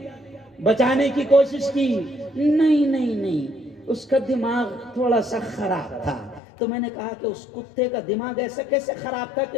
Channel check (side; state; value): right; drops out; at 6.4 s